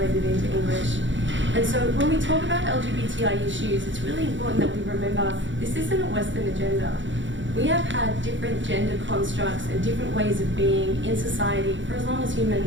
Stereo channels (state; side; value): late; left; 0.55 ms